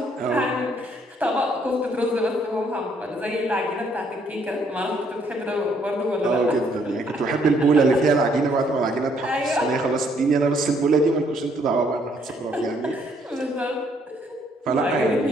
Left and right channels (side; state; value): both; normal; correlation 0.68